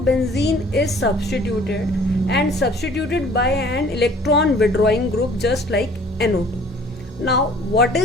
is substituted by an electron withdrawing group just like NO2. Now what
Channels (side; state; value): both; normal; correlation 0.53